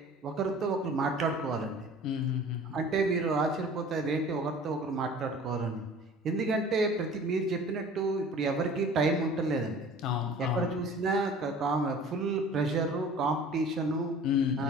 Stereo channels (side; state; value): both; normal; correlation 0.45